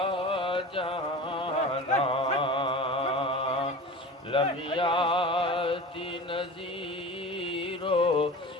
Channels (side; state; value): both; normal; correlation 0.34